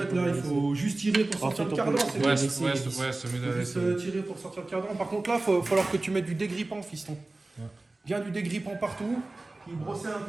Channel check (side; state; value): left; quieter; 3.0 dB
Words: là, il faut juste tirer pour sortir le cardan. C'est Ouais, mieux. c'est mieux de Juste laisser. tirer pour sortir le cardan. Par contre, là, il va falloir que tu mettes du dégrippant, fiston. Ouais. Bien du dégrippant partout. Puis brosser un